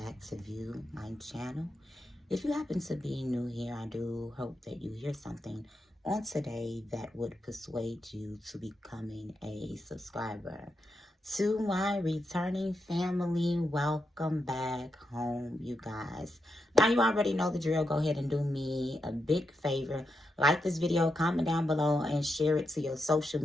to view my channel. If you happen to be new here, I do hope that you hear something on today that would persuade you to becoming a subscriber. To my returning family, welcome back home, you guys. Now you already know the drill. Go ahead and do me a big favor. Like this video, comment down below, and share it to your social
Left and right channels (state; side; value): normal; both; correlation 0.85